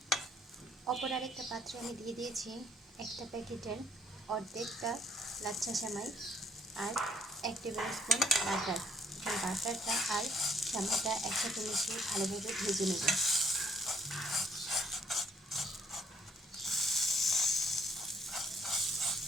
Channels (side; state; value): both; normal; correlation 0.67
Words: অপর আরেকটা পাত্রে আমি দিয়ে দিয়েছি একটা প্যাকেটের অর্ধেকটা লাচ্ছা সেমাই আর 1 টেবিল স্পুন বাটার। বাটারটা আর সেমাইটা একসাথে মিশিয়ে ভালোভাবে ভেজে নেব।